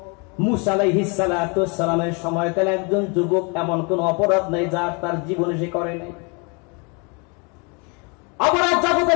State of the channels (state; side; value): quieter; right; 32.6 dB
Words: মূসা আলাইহিস সালাতু ওয়াস সালামের সময়কালে একজন যুবক, এমন কোন অপরাধ নাই যা তার জীবনে সে করে নাই। অপরাধ